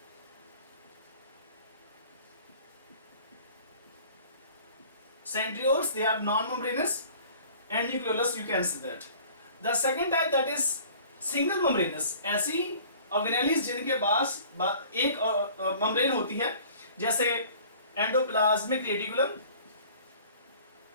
centrioles they are non-membranous and nucleolus you can see that. The second type that is single membranous, ऐसी ऑर्गेनेलिस जिनके पास एक मेम्ब्रेन होती है, जैसे endoplasmic reticulum,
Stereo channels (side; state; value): both; inverted; correlation -0.49